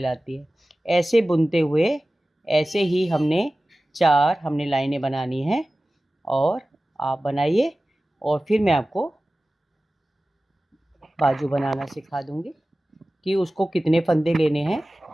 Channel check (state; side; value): normal; both; correlation 0.96